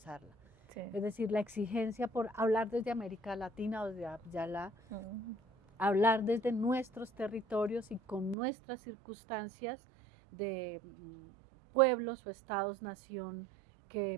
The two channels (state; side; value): drops out; left; at 8.3 s